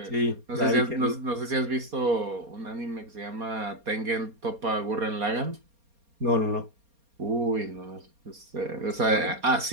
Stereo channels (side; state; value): left; late; 4.3 ms